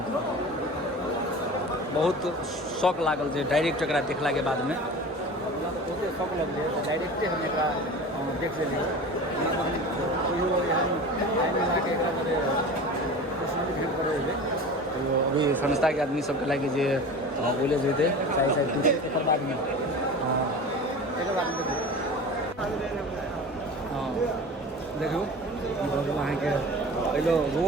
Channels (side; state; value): both; normal; correlation 0.35